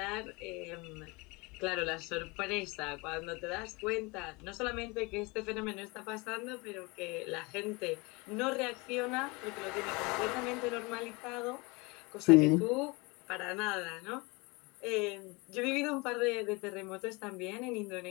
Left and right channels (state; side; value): quieter; right; 26.4 dB